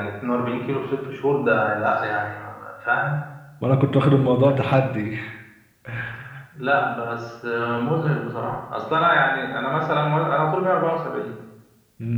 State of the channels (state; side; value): identical; both; correlation 1.00